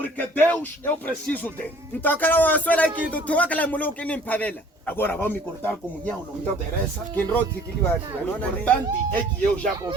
Deus, eu preciso dele. Agora vão me cortar comunhão, não me interessa. O importante é que eu já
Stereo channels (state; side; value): normal; both; correlation 0.53